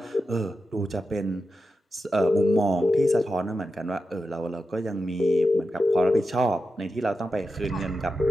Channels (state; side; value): normal; both; correlation 0.90